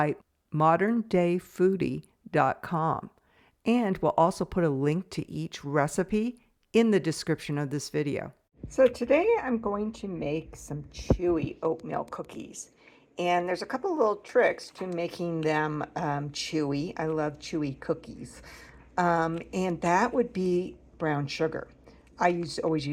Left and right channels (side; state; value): both; identical; correlation 1.00